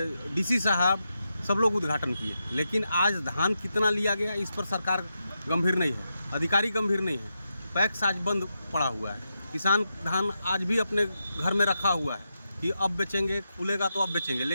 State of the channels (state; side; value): inverted; both; correlation -0.86